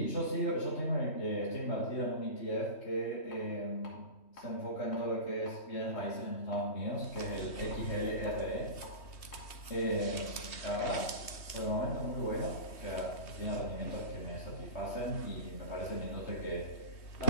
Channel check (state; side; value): late; right; 3.1 ms